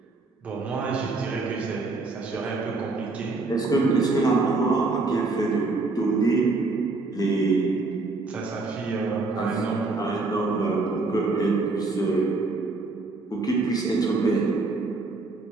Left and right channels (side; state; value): left; quieter; 3.6 dB